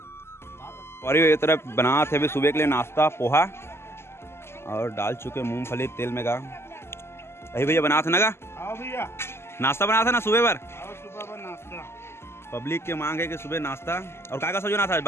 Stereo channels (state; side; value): late; right; 0.12 ms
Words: और ये तरफ बना थे अभी सुबह के लिए नाश्ता पोहा और डाल चुके मूंगफली तेल में का। अभी भैया बना था ना का भैया नाश्ता बना था ना सुबह पर नाश्ता। पब्लिक के मांग है कि सुबह नाश्ता। और का सब्जी बना था?